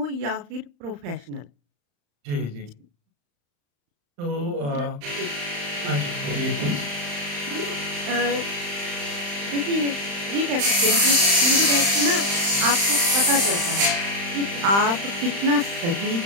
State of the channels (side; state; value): left; late; 35 ms